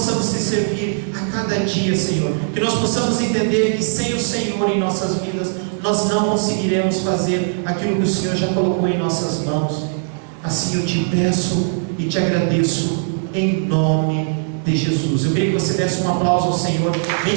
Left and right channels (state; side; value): silent; left; digital silence